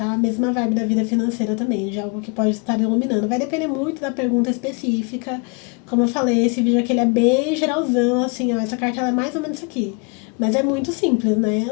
A mesma vibe da vida financeira também, de algo que pode estar iluminando. Vai depender muito da pergunta específica. Como eu falei, esse vídeo aqui ele é bem geralzão, assim, ó, essa carta ela é mais ou menos isso aqui. Mas é muito simples, né?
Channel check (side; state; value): right; quieter; 33.3 dB